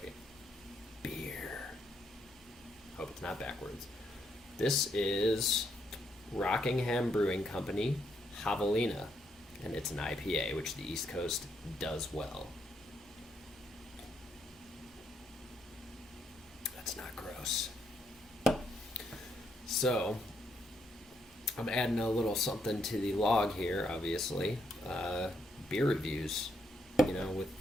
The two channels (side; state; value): both; normal; correlation 0.75